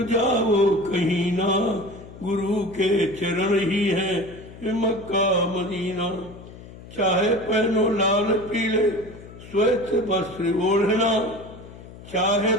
जाओ कहीं ना, गुरु के चरण ही है ये मक्का मदीना। चाहे पहनो लाल पीले श्वेत वस्त्र ओढ़ना, चाहे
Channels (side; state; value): left; noise; hum, 17 dB below the sound